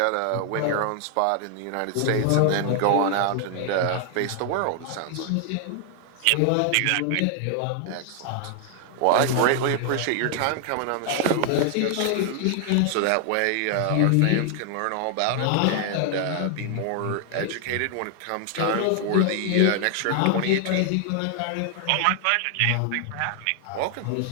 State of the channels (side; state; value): both; different; correlation 0.00